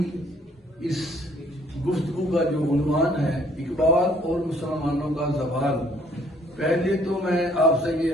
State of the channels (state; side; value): normal; both; correlation 0.61